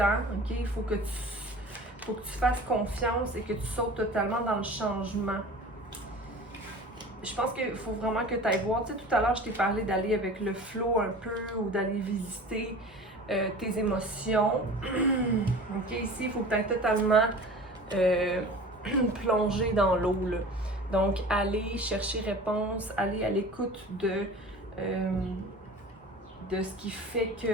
ok? Il faut que tu fasses confiance et que tu sautes totalement dans le changement. Je pense qu'il faut vraiment que tu ailles voir. Tu sais, tout à l'heure, je t'ai parlé d'aller avec le flow un peu ou d'aller visiter tes émotions. Ok, ici, il faut que tu ailles totalement plonger dans l'eau. Donc, aller chercher réponse, aller à l'écoute de ce qui fait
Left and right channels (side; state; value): both; normal; correlation 0.39